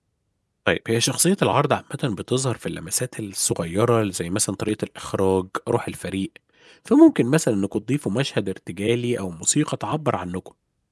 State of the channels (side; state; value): both; identical; correlation 1.00